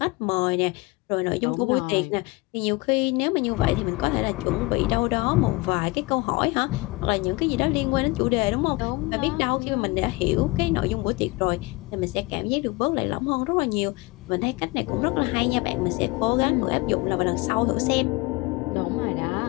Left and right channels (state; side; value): quieter; right; 23.2 dB